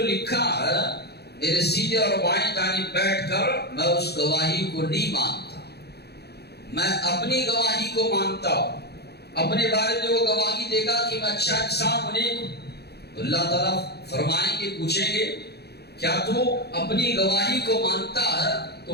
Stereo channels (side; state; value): right; late; 0.48 ms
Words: لکھا ہے، میرے سیدھے اور بائیں جانب بیٹھ کر میں اس گواہی کو نہیں مانتا، میں اپنی گواہی کو مانتا ہوں۔ اپنے بارے میں وہ گواہی دے گا کہ میں اچھا انسان ہوں، نیک ہوں۔ تو اللہ تعالیٰ فرمائیں گے، پوچھیں گے کیا تو اپنی گواہی کو مانتا ہے؟